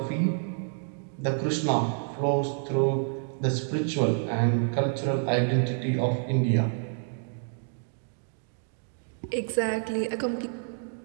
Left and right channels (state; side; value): silent; left; 59 dB below the other